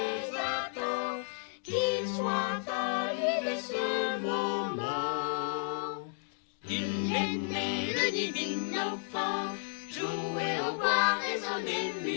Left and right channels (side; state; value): right; silent; 56 dB below the other